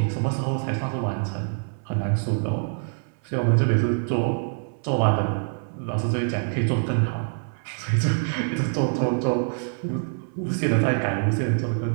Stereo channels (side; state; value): left; silent; 62 dB below the other